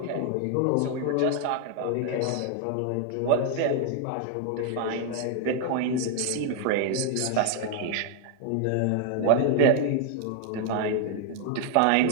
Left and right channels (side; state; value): both; different; correlation 0.00